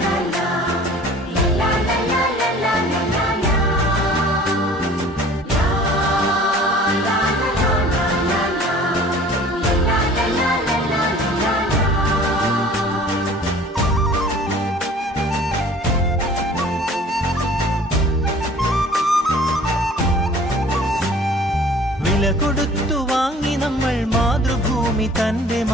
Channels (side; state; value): both; normal; correlation 0.48